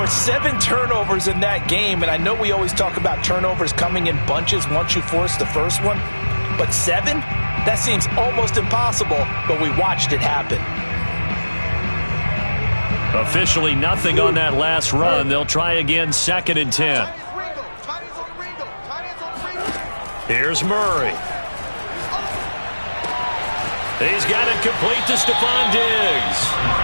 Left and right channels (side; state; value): both; inverted; correlation -1.00